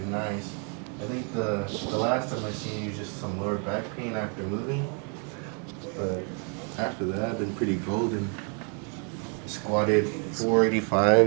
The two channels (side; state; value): left; quieter; 39.5 dB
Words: nice. I think the last time I seen you, just some lower back pain after moving. But after that, I've been pretty golden. Squatted